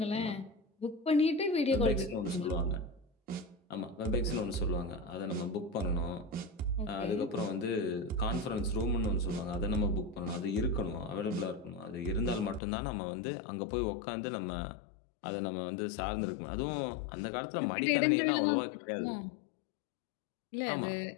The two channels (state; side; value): drops out; right; at 12.6 s